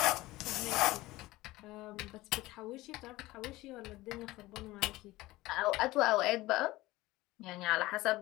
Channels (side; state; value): right; quieter; 18.7 dB